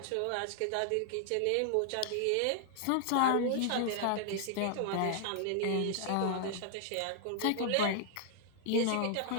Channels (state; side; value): different; both; correlation 0.00